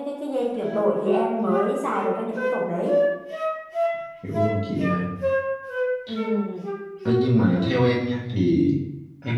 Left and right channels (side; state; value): both; identical; correlation 1.00